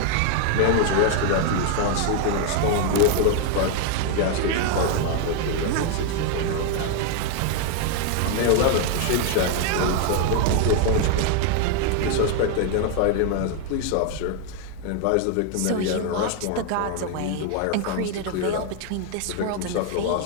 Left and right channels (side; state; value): both; different; correlation 0.00